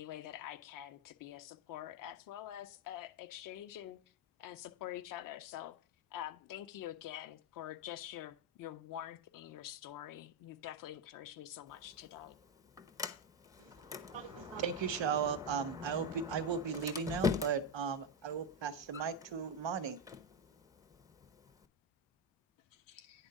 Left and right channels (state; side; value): normal; both; correlation 0.08